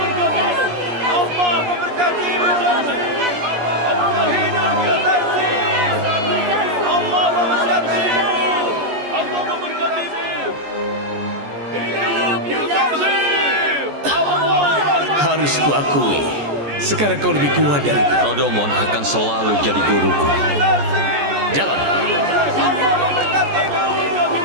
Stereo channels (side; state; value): left; late; 14 ms